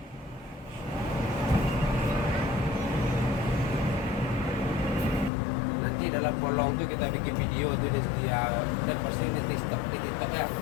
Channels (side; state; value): right; drops out; at 5.3 s